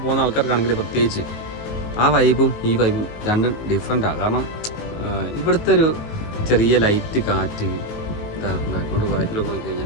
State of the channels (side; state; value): right; late; 19 ms